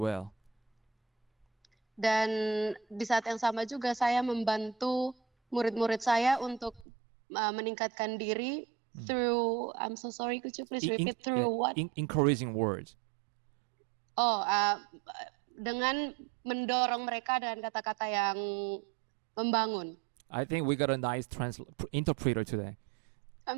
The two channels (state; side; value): drops out; left; at 6.9 s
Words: Dan di saat yang sama juga saya membantu murid-murid saya untuk meningkatkan diri through, I'm so sorry, could you please repeat through what? Encouraging words. Dengan mendorong mereka dengan kata-kata yang membangun. I think we got a nice interpreter today.